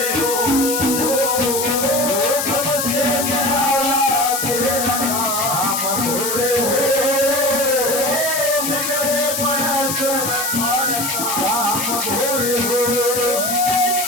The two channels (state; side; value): noise; left; hiss, 2 dB below the sound